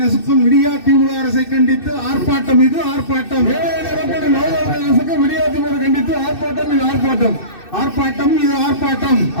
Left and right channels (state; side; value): late; right; 2.6 ms